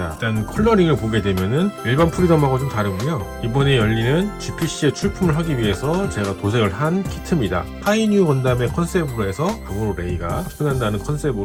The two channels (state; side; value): identical; both; correlation 1.00